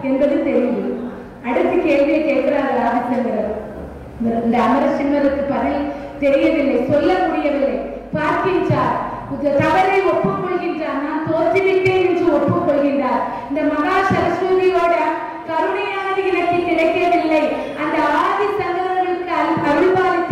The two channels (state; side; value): identical; both; correlation 1.00